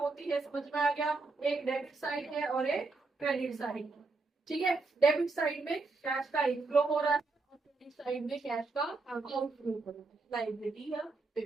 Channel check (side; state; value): left; quieter; 3.7 dB